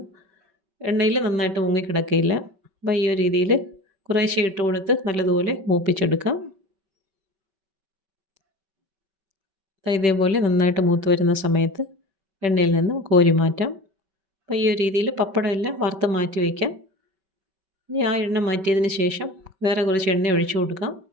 എണ്ണയിൽ നന്നായിട്ട് മുങ്ങിക്കിടക്കുകയില്ല. അപ്പോൾ ഈ ഒരു രീതിയിൽ കുറേശ്ശെ ഇട്ട് കൊടുത്ത് നല്ലതുപോലെ മൂപ്പിച്ചെടുക്കാം. ഇതേപോലെ നന്നായിട്ട് മൂത്ത് വരുന്ന സമയത്ത് എണ്ണയിൽ നിന്ന് കോരി മാറ്റാം. അപ്പോൾ ഈ ഒരു രീതിയിൽ പപ്പടം എല്ലാം വറുത്ത് മാറ്റി വയ്ക്കാം. ഇനി ആ എണ്ണ മാറ്റിയതിന് ശേഷം വേറെ കുറച്ച് എണ്ണ ഒഴിച്ചു കൊടുക്കാം.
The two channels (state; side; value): late; left; 5.2 ms